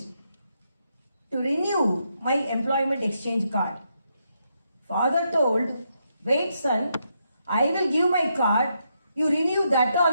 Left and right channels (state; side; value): inverted; both; correlation -0.80